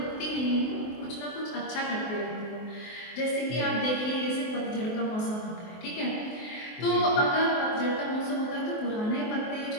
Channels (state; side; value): late; right; 23 ms